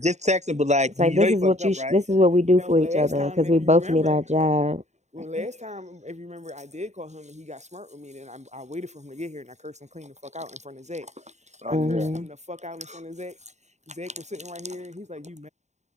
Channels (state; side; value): late; left; 0.33 ms